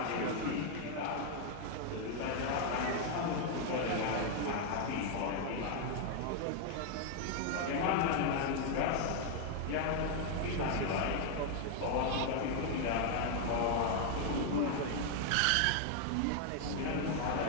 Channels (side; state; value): both; different; correlation 0.00